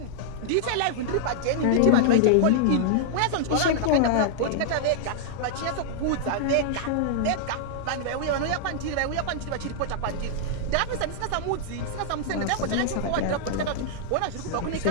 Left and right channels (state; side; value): different; both; correlation -0.01